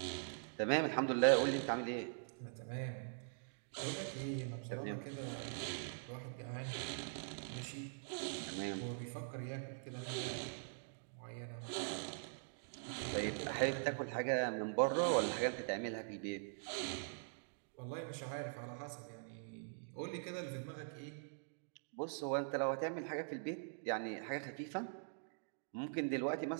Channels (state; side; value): silent; left; digital silence